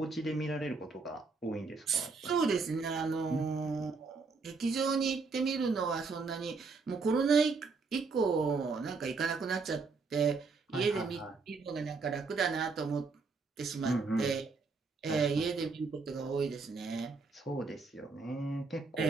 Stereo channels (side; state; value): left; quieter; 4.4 dB